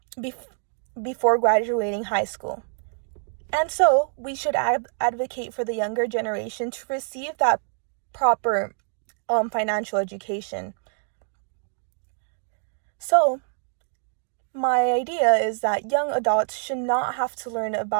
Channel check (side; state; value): left; silent; digital silence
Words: before graduating high school. And so, we should advocate for the younger generation to receive that proper financial education. So, my idea is that young adults should not have to learn